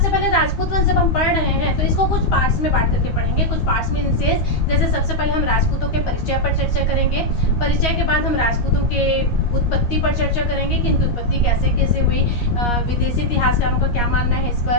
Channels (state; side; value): late; right; 13 ms